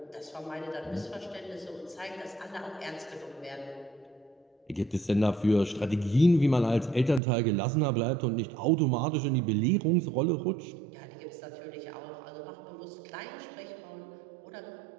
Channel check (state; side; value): drops out; left; at 7.2 s